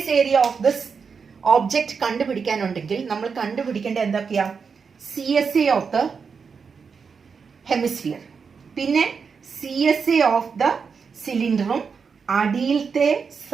area of this object കണ്ടുപിടിക്കാനുണ്ടെങ്കിൽ നമ്മൾ കണ്ടുപിടിക്കേണ്ട എന്തൊക്കെയാ? CSA ഓഫ് ദ ഹെമിസ്ഫിയർ, പിന്നെ CSA ഓഫ് ദ സിലിണ്ടറും അടിയിലത്തെ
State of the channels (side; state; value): left; quieter; 5.7 dB